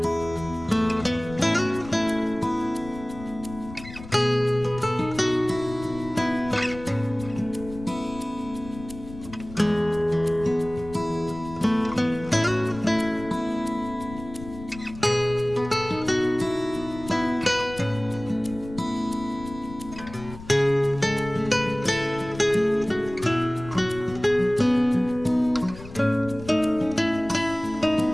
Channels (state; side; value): noise; left; rumble, 15 dB below the sound